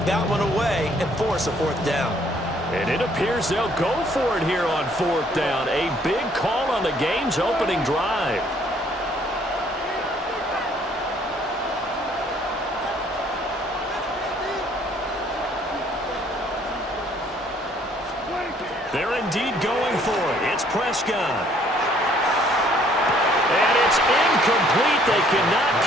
that one away and force a 4th down. And it appears they'll go for it here on 4th down. A big call on the game's opening drive. They're indeed going for it. It's Prescott. And it's incomplete. They cannot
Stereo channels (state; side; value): normal; both; correlation 0.62